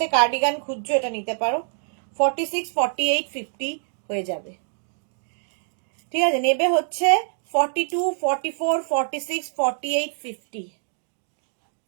কার্ডিগান খুঁজছো এটা নিতে পারো। 46, 48, 50 হয়ে যাবে। ঠিক আছে, নেবে হচ্ছে 42, 44, 46, 48, 50।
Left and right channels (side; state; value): left; silent; digital silence